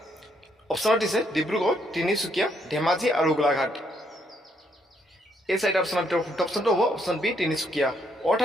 অপশ্যনত দিছে ডিব্ৰুগড়, তিনিচুকীয়া, ধেমাজি আৰু গোলাঘাট। এই চাৰিটা অপশ্যনৰ ভিতৰত শুদ্ধ অপশ্যনটো হ'ব অপশ্যন বি তিনিচুকীয়া,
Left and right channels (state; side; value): normal; both; correlation 0.73